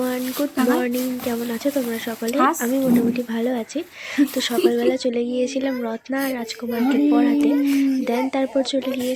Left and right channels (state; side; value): identical; both; correlation 1.00